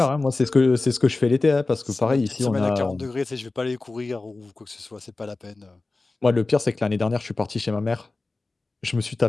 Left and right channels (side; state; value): right; quieter; 3.4 dB